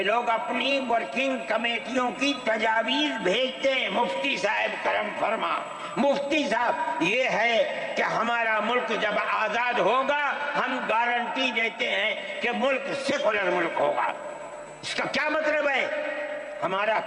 لوگ اپنی ورکنگ کمیٹیوں کی تجاویز بھیجتے ہیں، مفتی صاحب کرم فرما، مفتی صاحب یہ ہے کہ ہمارا ملک جب آزاد ہوگا ہم گارنٹی دیتے ہیں کہ ملک سیکولر ملک ہوگا۔ اس کا کیا مطلب ہے؟ ہمارا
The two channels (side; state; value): both; identical; correlation 1.00